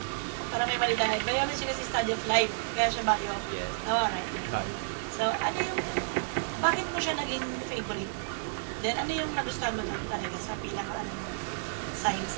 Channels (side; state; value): left; silent; digital silence